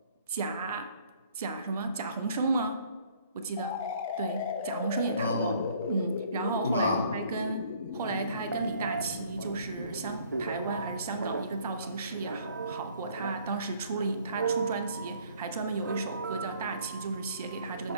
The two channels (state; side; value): inverted; both; correlation -0.59